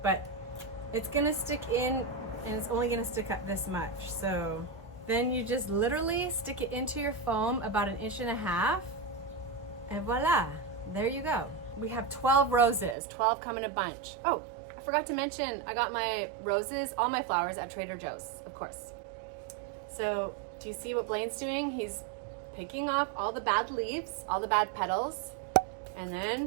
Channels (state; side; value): drops out; left; at 13.0 s